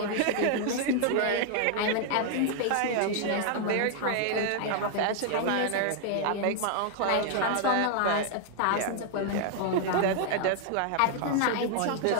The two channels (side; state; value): both; different; correlation 0.00